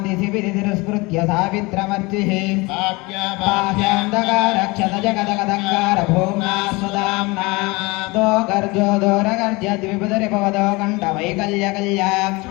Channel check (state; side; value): quieter; right; 24.7 dB